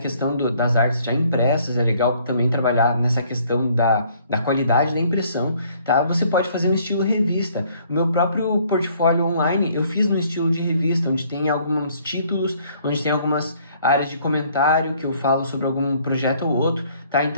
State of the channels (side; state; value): both; inverted; correlation -0.61